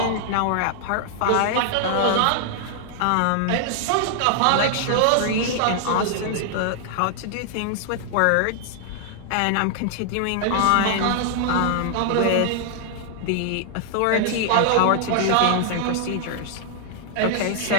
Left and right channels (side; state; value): both; different; correlation -0.01